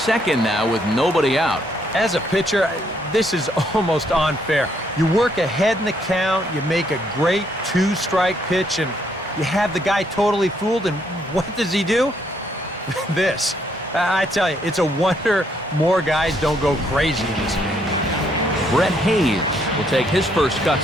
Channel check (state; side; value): normal; both; correlation 0.71